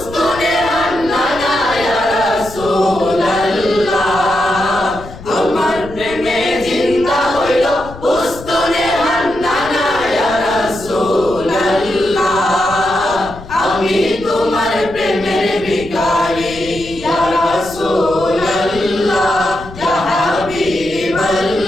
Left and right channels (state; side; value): noise; left; rumble, 15 dB below the sound